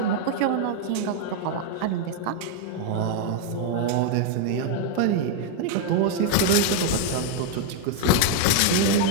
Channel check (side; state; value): both; different; correlation 0.00